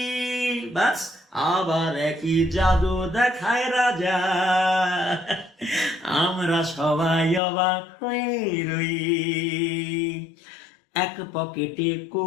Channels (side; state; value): right; drops out; at 7.4 s